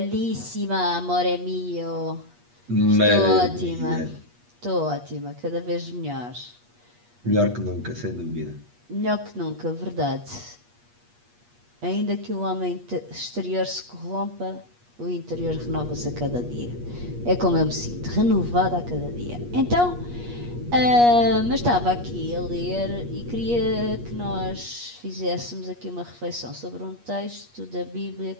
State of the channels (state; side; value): late; left; 8.4 ms